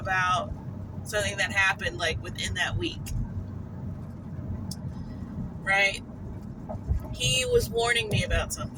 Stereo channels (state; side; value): identical; both; correlation 1.00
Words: something that happened like within that week. Right? He was warning me about